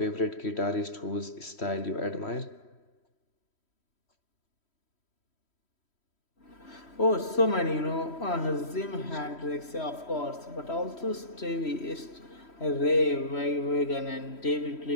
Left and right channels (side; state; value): right; late; 3.1 ms